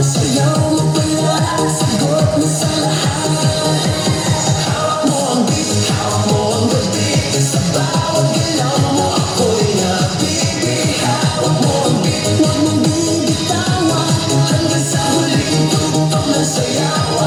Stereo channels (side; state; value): both; identical; correlation 1.00